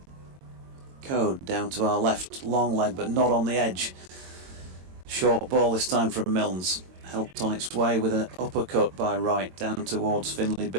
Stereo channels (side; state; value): left; late; 22 ms